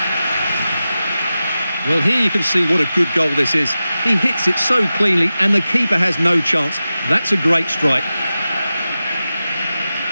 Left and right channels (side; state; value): both; inverted; correlation -0.94